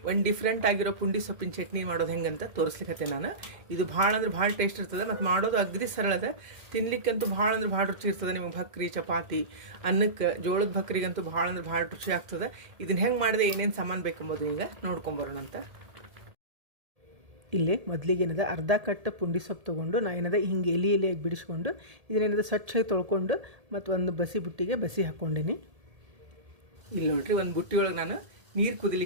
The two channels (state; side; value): late; left; 2.1 ms